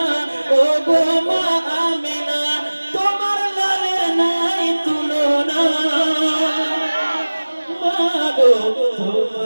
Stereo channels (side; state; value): both; inverted; correlation -1.00